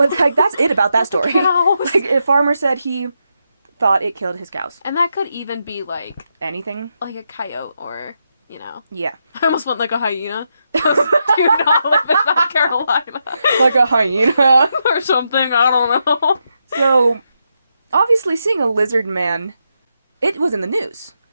like, that's it about that story. Cows. Like, a farmer said he thought it killed his cows. And that could even be, like... Anything? Like a coyote or, you know... Yeah. I almost went like a hyena. Do not live in South Carolina. Like a hyena. Or something, I don't know. So, obviously seeing a lizard man, it was in the news.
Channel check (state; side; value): inverted; both; correlation -0.83